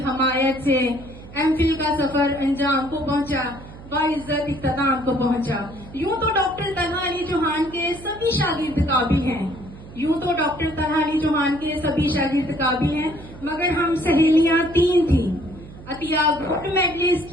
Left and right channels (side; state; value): right; noise; hum, 17 dB below the sound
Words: हमायत से MPhil का सफर अंजाम को पहुंचा, बाइज्जत इख्तिताम को पहुंचा। यूं तो डॉक्टर तलहा अली चौहान के सभी शागिर्द काबिल हैं, यूं तो डॉक्टर तलहा अली चौहान के सभी शागिर्द काबिल हैं, मगर हम सहेलियां 3 थी। Atiya gold